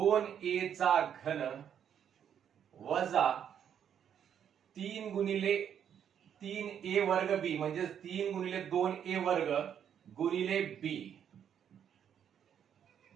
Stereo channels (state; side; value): quieter; left; 8.8 dB